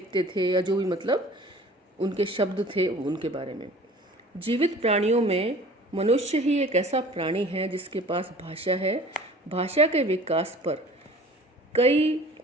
थे या जो भी मतलब उनके शब्द थे उनके बारे में। जीवित प्राणियों में मनुष्य ही एक ऐसा प्राणी है जिसके पास भाषा है। भाषा के विकास पर कई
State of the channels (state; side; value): normal; both; correlation 0.46